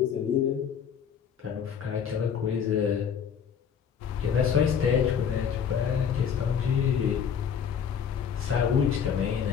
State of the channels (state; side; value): quieter; right; 7.6 dB